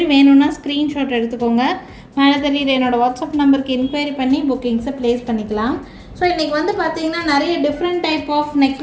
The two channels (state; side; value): identical; both; correlation 1.00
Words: வேணும்னா ஸ்க்ரீன்ஷாட் எடுத்துக்கோங்க. மேலே தெரியுது என்னோடய வாட்ஸ்அப் நம்பருக்கு என்கொயரி பண்ணி புக்கிங்ஸை ப்ளேஸ் பண்ணிக்கலாம். ஸோ இன்றைக்கி வந்து பார்த்திங்கன்னா நிறைய different type of